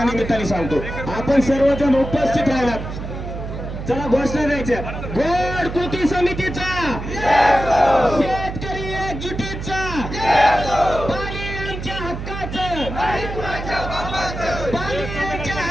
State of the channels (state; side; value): noise; right; hum, 7 dB below the sound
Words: निमित्ताने सांगतो. आपण सर्वजण उपस्थित राहणार. चला घोषणा द्यायच्या. गोड कृती समितीचा, शेतकरी एकजुटीचा, पाणी आमच्या हक्काचं, पाणी आमच्या